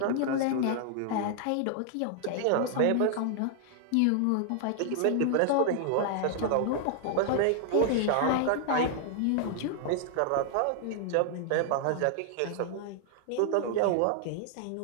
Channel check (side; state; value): both; different; correlation 0.00